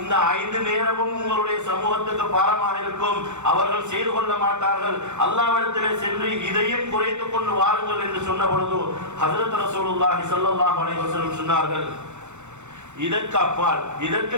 5 நேரமும் உங்களுடைய சமூகத்துக்கு பாரமாக இருக்கும், அவர்கள் செய்து கொள்ள மாட்டார்கள், அல்லாஹ்விடத்திலே சென்று இதையும் குறைத்துக் கொண்டு வாருங்கள் என்று சொன்ன பொழுது ஹஜ்ரத் ரசூலுல்லாஹி ஸல்லல்லாஹு அலைஹி வஸல்லம் சொன்னார்கள், இதற்கு அப்பால் இதற்கு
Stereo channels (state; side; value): late; left; 0.83 ms